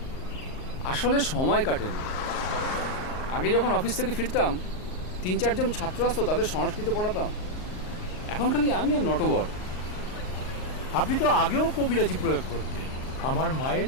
আসলে সময় কাটে না। আগে যখন অফিস থেকে ফিরতাম 3-4 জন ছাত্র আসতো, তাদের সংস্কৃত পড়াতাম। এখন খালি আমি আর নটবর। আপনি তো আগেও কবিরাজি প্রয়োগ করতেন। আমার মায়ের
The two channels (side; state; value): right; late; 38 ms